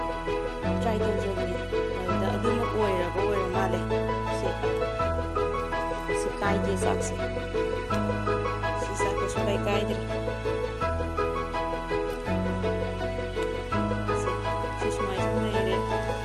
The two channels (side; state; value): both; identical; correlation 1.00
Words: ꯇ꯭ꯔꯥꯏ ꯇꯧꯖꯕꯅꯤ ꯑꯗꯨꯗ ꯑꯗꯨꯃꯛ ꯑꯣꯏꯔ ꯃꯥꯜꯂꯦ ꯁꯤ ꯀꯥꯏꯗꯦ ꯆꯥꯛꯁꯦ ꯁꯤ ꯆꯥꯛꯇꯣ ꯁꯨꯀꯥꯏ ꯀꯥꯏꯗ꯭ꯔꯦ ꯁꯤ ꯁꯨꯃꯥꯏꯅ ꯁꯨꯝ ꯂꯩꯔꯦ